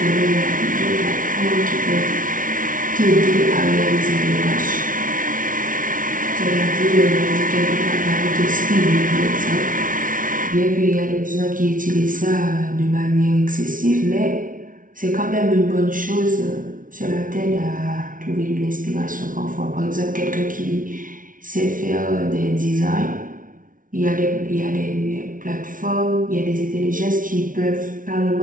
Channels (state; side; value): late; left; 0.39 ms